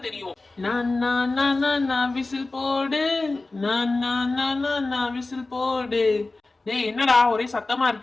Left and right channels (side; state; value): right; quieter; 3.3 dB